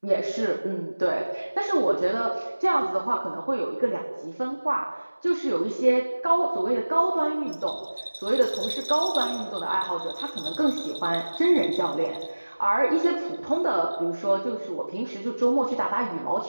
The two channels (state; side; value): inverted; both; correlation -1.00